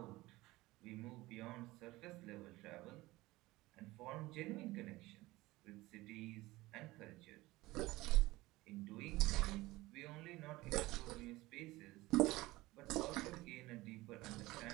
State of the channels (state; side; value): quieter; left; 19.4 dB